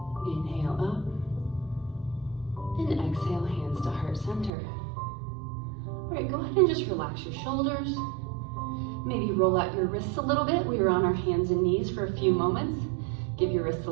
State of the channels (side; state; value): left; drops out; at 4.5 s